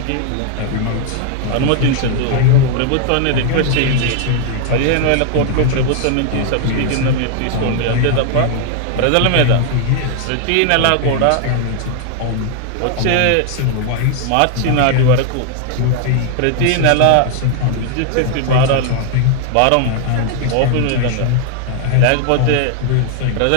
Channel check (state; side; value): different; both; correlation 0.00